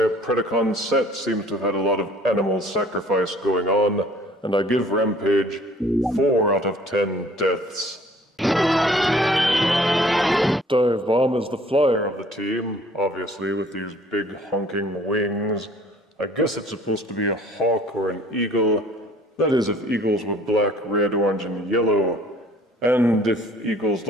Predacon set seems to have had a lot of animal sacrifice going on, and I give Rampage 4 out of 10 deaths. Dive Bomb is the flyer of the team, obviously with these big honking wings. I guess it's supposed to be a hawk or an eagle. That is, if eagles were black, red, orange, and yellow. And if eagles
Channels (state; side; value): normal; both; correlation 0.54